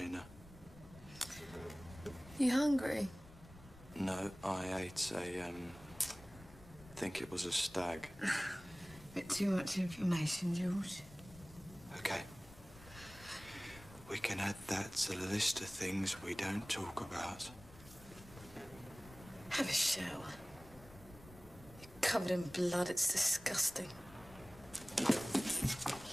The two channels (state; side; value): noise; left; rumble, 22 dB below the sound